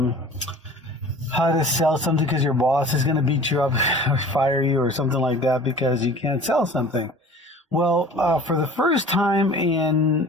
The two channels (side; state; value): both; normal; correlation 0.43